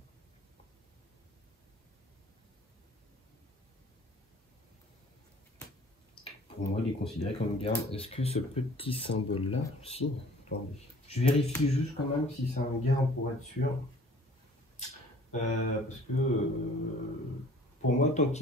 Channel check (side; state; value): both; normal; correlation 0.51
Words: Pour moi, il est considéré comme garde. Est-ce que ce petit symbole-là, si, attendez. Je vérifie juste quand même si c'est un garde pour être sûr. Parce que pour moi, tant